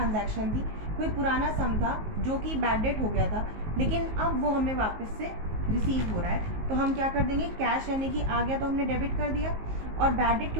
थी, कोई पुराना सम था जो कि बैड डेट हो गया था, लेकिन अब वो हमें वापस से रिसीव हो रहा है। तो हम क्या कर देंगे, कैश यानी कि आ गया तो हमने डेबिट कर दिया, और बैड डेट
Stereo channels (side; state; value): left; late; 19 ms